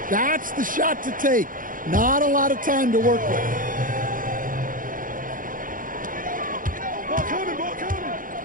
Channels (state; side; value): late; left; 0.40 ms